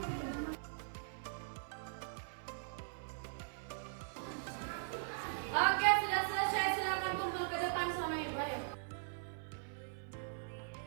Oke, sudah selesai. Silakan kumpul ke depan sama Ibu ya.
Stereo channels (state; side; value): silent; left; 51 dB below the other